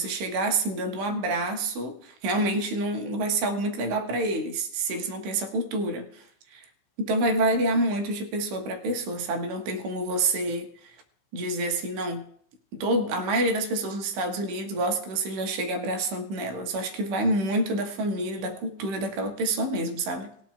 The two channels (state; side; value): late; left; 15 ms